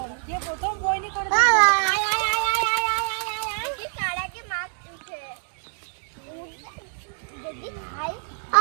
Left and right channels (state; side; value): silent; left; 61 dB below the other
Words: যে প্রথম বইনি করে